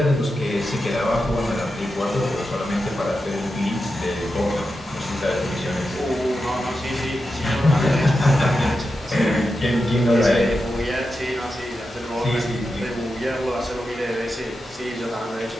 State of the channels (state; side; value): normal; both; correlation 0.89